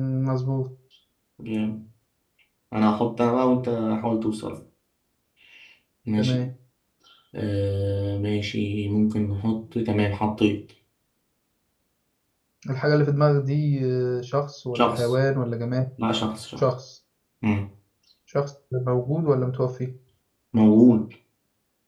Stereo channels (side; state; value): both; identical; correlation 1.00